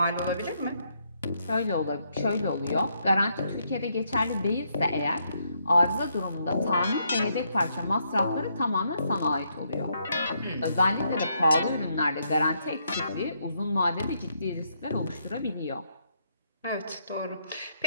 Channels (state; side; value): inverted; both; correlation -0.76